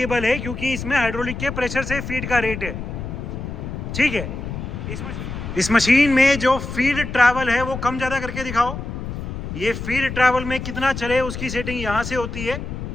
है, क्योंकि इसमें हाइड्रोलिक के प्रेशर से फीड का रेट है। ठीक है, इस मशीन में जो फीड ट्रैवल है वो कम ज़्यादा करके दिखाओ। ये फीड ट्रैवल में कितना चले उसकी सेटिंग यहाँ से होती है।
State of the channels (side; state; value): left; noise; rumble, 7 dB below the sound